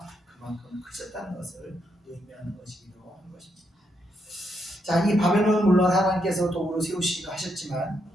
그만큼 크셨다는 것을 의미하는 것이기도 한 것입니다. 자, 이 바벨론은 물론 하나님께서 도구로 세우시기도 하셨지만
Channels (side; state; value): both; normal; correlation 0.79